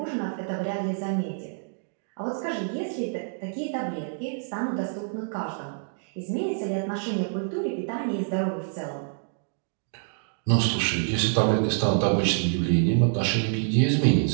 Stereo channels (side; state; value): left; silent; digital silence